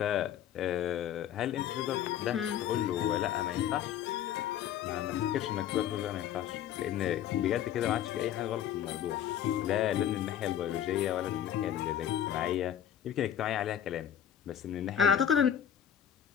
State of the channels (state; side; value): quieter; right; 10.1 dB